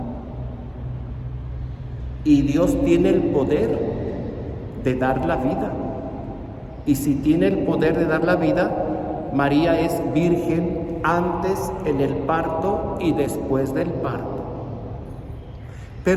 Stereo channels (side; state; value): both; identical; correlation 1.00